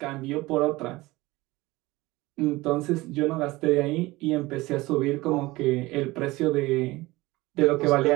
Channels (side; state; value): left; quieter; 20.3 dB